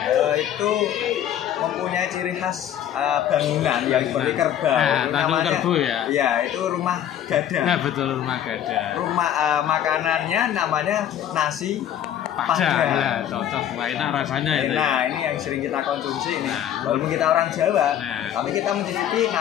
Itu mempunyai ciri khas bangunan yang seperti kerbau. Namanya kerbau ya. Iya, itu rumah gada. Nah, betul, rumah gada. Rumah makanannya namanya nasi Padang. Nah, cocok, enak rasanya itu. Nah, ini yang sering kita konsumsi ini. Walaupun kita orang Jawa, tapi kita mencicipi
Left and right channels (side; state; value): right; quieter; 10.5 dB